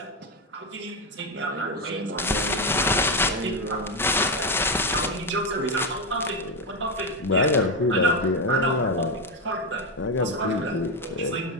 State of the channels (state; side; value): normal; both; correlation 0.09